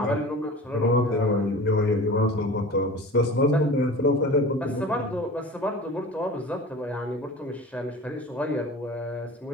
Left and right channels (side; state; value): both; normal; correlation 0.37